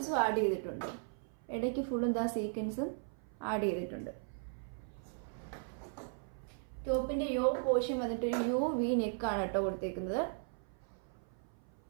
ആഡ് ചെയ്തിട്ടുണ്ട്. ഇടയ്ക്ക് ഫുള്ളും ദാ സീക്വൻസും ആഡ് ചെയ്തിട്ടുണ്ട്. ടോപ്പിന്റെ യോ പോർഷൻ വന്നിട്ട് ഒരു യു വി നെക്കാണ് കേട്ടോ കൊടുത്തേക്കുന്നത്.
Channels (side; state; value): left; silent; 53 dB below the other